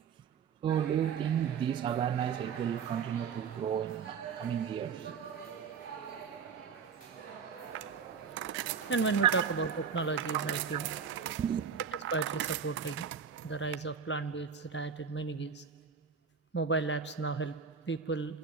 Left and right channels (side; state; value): left; quieter; 6.4 dB